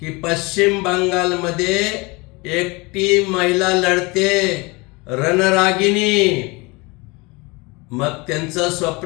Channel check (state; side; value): quieter; right; 25.9 dB